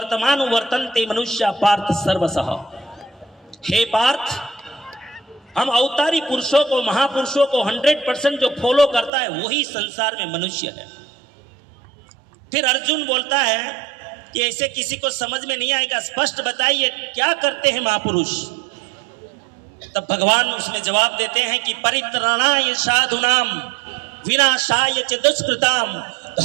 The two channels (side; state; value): left; drops out; at 9.1 s